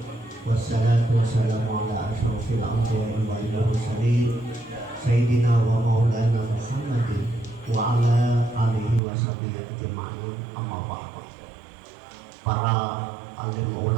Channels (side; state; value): left; drops out; at 9.0 s